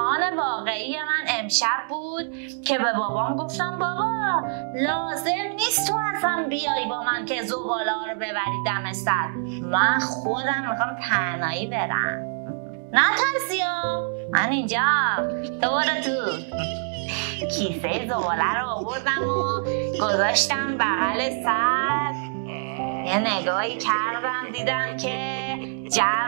واقعی من امشب بود که به بابام گفتم بابا لازم نیست تو اصلا بیای با من که زباله رو ببری دم سر، من خودم میخوام تنهایی برم. نه ترسیا، من اینجا دوباره تو. کیسه زباله رو آوردم و گذاشتم بغل سر. یه نگاهی کردم دیدم که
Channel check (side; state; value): left; silent; 62 dB below the other